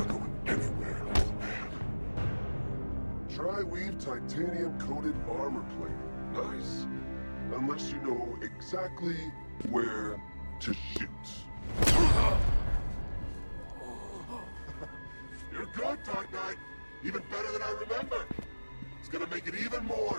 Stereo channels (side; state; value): both; inverted; correlation -1.00